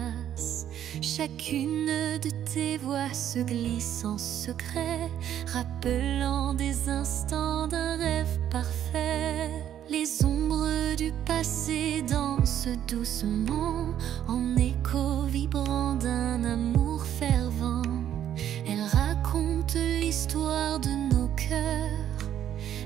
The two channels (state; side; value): quieter; left; 10.5 dB